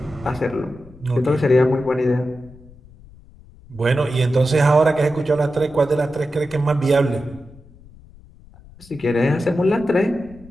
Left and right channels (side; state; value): left; noise; rumble, 23 dB below the sound